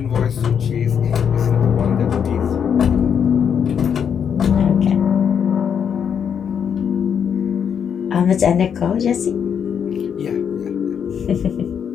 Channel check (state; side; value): quieter; right; 7.7 dB